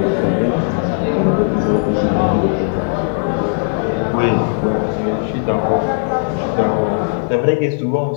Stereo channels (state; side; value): silent; right; 65 dB below the other